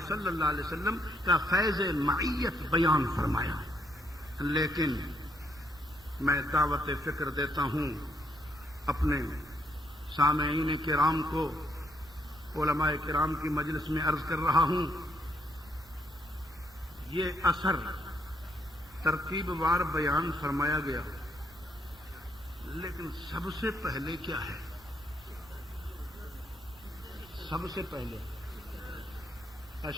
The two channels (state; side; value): normal; both; correlation 0.73